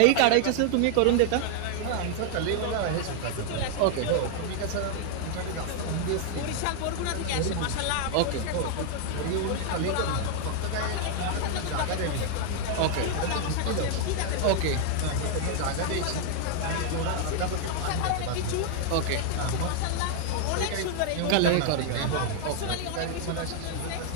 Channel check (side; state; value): both; different; correlation 0.00